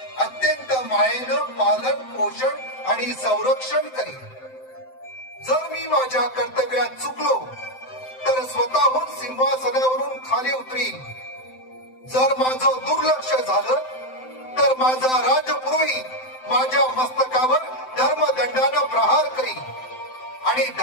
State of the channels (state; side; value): late; right; 7.8 ms